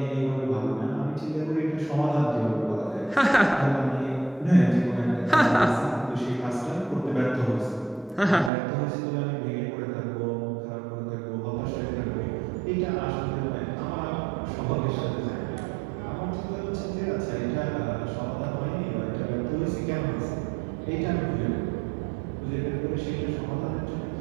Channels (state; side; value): drops out; left; at 8.5 s